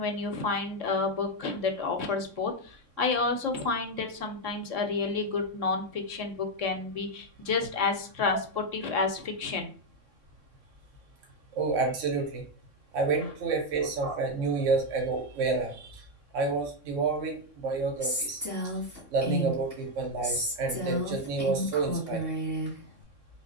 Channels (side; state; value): left; late; 3.6 ms